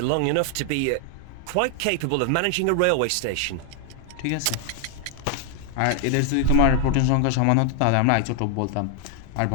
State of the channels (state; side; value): different; both; correlation 0.00